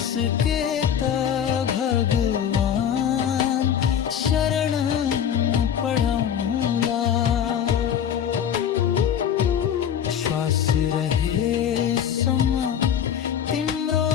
त भगवान शरण पढाउँला श्वास रहेसम्म तिम्रो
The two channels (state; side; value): quieter; right; 8.9 dB